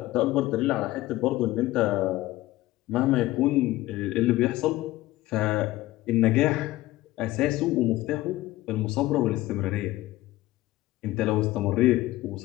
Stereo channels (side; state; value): right; quieter; 17.2 dB